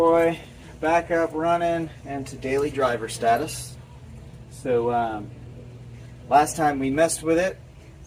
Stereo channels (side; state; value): both; identical; correlation 1.00